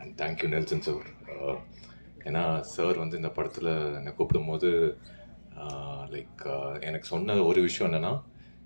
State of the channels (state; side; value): inverted; both; correlation -1.00